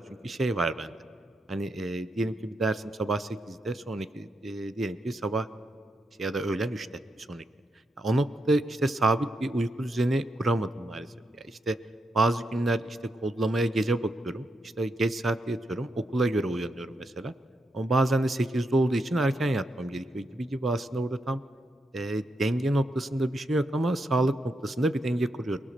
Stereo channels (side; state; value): both; normal; correlation 0.82